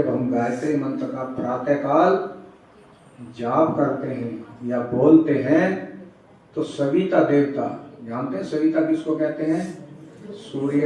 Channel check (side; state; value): both; identical; correlation 1.00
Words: हम गायत्री मंत्र का प्रातः काल जाप करते हैं या बोलते हैं तो सविता देवता, जानते हैं सविता किसको कहते हैं?